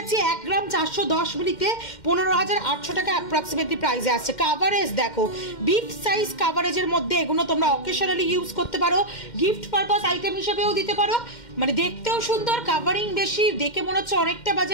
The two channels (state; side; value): late; right; 2.1 ms